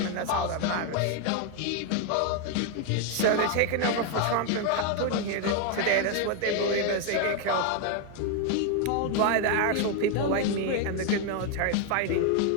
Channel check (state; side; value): different; both; correlation 0.01